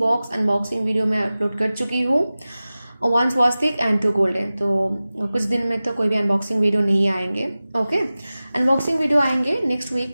अनबॉक्सिंग वीडियो मैं अपलोड कर चुकी हूँ। 1 स्वस्तिक एंड 2 गोल्डन। तो कुछ दिन में तो कोई भी अनबॉक्सिंग वीडियो नहीं आएंगे। ओके, अनबॉक्सिंग वीडियो आएंगे नेक्स्ट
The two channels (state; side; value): inverted; both; correlation -0.97